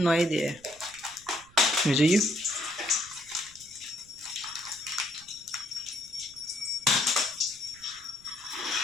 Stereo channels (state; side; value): noise; right; rumble, 26 dB below the sound